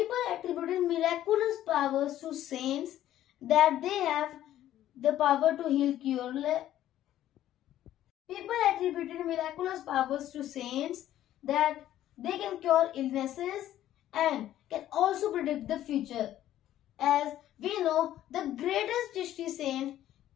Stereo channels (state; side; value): quieter; right; 12.7 dB